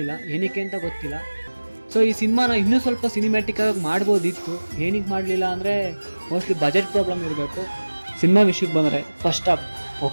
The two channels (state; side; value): inverted; both; correlation -1.00